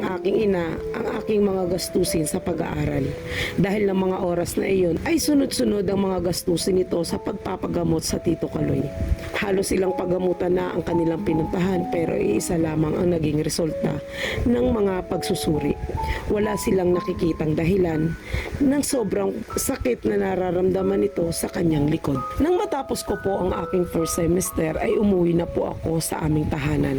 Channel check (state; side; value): identical; both; correlation 1.00